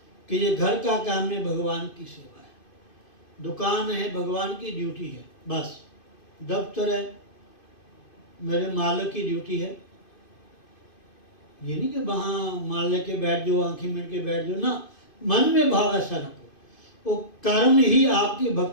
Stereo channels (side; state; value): right; late; 2.5 ms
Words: कि ये घर का काम है, भगवान की सेवा है। दुकान है, भगवान की ड्यूटी है। बस दफ्तर है, मेरे मालिक की ड्यूटी है। ये नहीं कि वहाँ माल लेके बैठ जाओ, आंखें मिल के बैठ जाओ ना। मन में भाव ऐसा रखो, वो कर्म ही आपकी